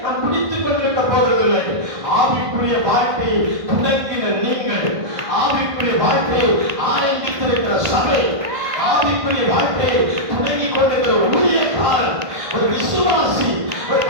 நாம் குடித்துக் கொண்டிருக்க போவதில்லை. ஆவிக்குரிய வாழ்க்கையை தொடங்கின நீங்கள், ஆவிக்குரிய வாழ்க்கையை ஆரம்பித்திருக்கிற சபை, ஆவிக்குரிய வாழ்க்கையை தொடங்கிக் கொண்டிருக்கிற ஊழியக்காரன், ஒரு விசுவாசி, ஒரு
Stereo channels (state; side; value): late; left; 1.5 ms